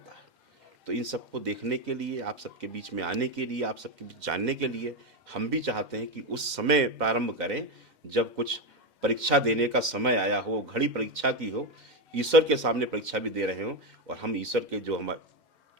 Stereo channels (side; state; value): left; late; 2.1 ms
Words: है। तो इन सबको देखने के लिए, आप सबके बीच में आने के लिए, आप सबके बीच जानने के लिए हम भी चाहते हैं कि उस समय प्रारंभ करें जब कुछ परीक्षा देने का समय आया हो, घड़ी परीक्षा की हो, ईश्वर के सामने परीक्षा भी दे रहे हो, और हम ईश्वर के जो हम